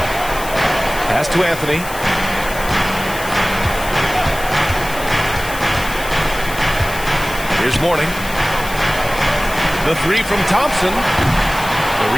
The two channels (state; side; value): noise; left; hiss, 12 dB below the sound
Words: Pass to Anthony. Here's Mourning. The 3 from Thompson. The